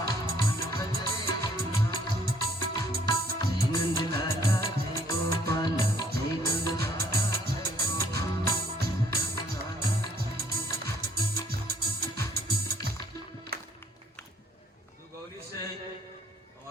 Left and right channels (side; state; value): both; normal; correlation 0.63